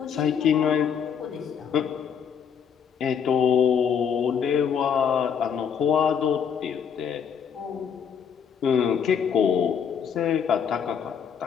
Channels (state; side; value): quieter; right; 7.4 dB